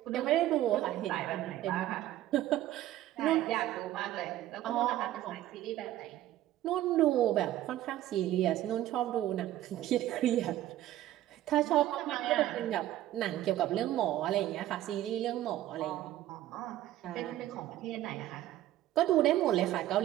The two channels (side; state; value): left; quieter; 13.9 dB